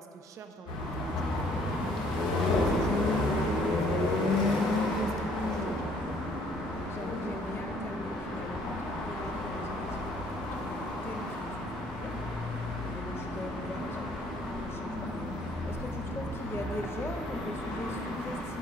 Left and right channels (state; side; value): normal; both; correlation 0.62